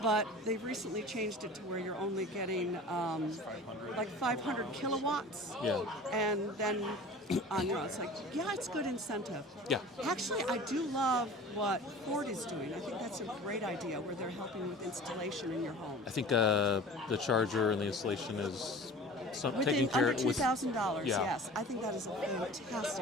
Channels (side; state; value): both; normal; correlation 0.40